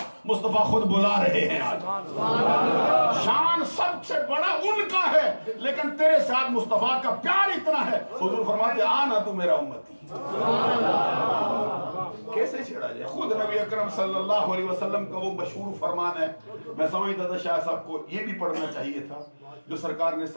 مصطفیٰ خود بلا رہے ہیں آج شان سب سے بڑا ان کا ہے لیکن تیرے ساتھ مصطفیٰ کا پیار اتنا ہے حضور فرماتے آنا تو میرا امتی. کیسے چھڑا جائے. خود نبی اکرم صلی اللہ علیہ وسلم کا وہ مشہور فرمان ہے میں سمجھتا تھا شاہ صاحب کو یہ بھی پڑھنا چاہیے تھا جو سرکار نے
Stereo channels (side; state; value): both; inverted; correlation -1.00